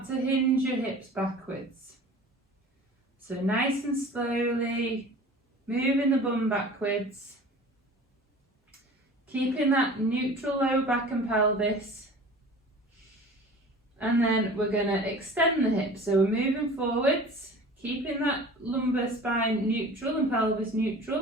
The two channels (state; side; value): normal; both; correlation 0.41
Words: to hinge your hips backwards. So nice and slowly, moving the bum backwards. Keeping that neutral lower back and pelvis. And then we're going to extend the hips. So we're moving forwards, keeping that lumbar spine neutral and pelvis